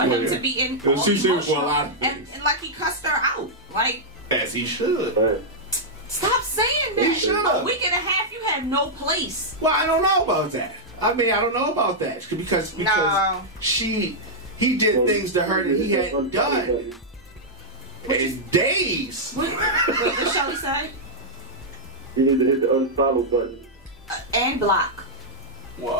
him to be in. It was all too soon for a emotional, lot of and, things. and like he cussed her out. Like, As he should. stop saying He that. should've. A week and a half, you have no place. Well, I don't know about that. I mean, I don't know about that because No. he did things to her that he hadn't done in days. What shall we say? You need to hit the unfollow button. And block.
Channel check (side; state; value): both; normal; correlation -0.06